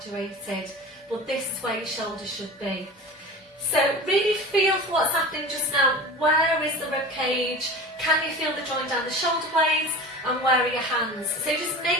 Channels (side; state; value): both; normal; correlation 0.34